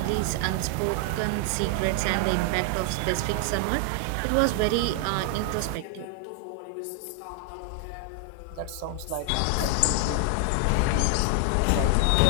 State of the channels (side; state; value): both; different; correlation 0.00